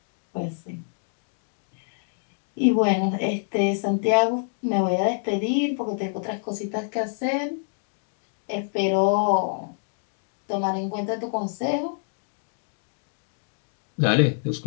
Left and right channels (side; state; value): right; silent; digital silence